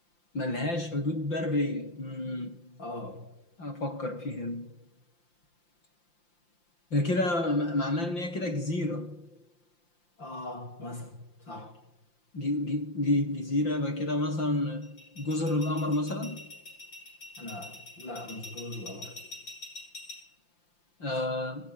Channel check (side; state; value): right; late; 5.8 ms